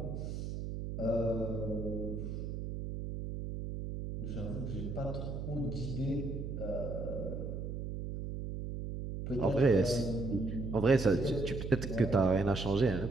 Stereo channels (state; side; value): noise; right; hum, 5 dB below the sound